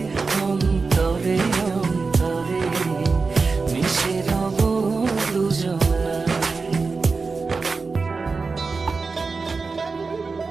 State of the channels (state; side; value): quieter; left; 4.4 dB